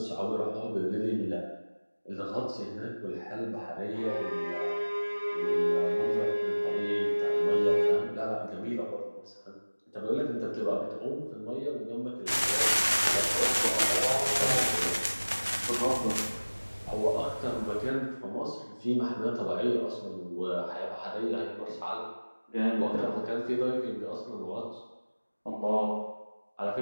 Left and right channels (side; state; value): both; inverted; correlation -1.00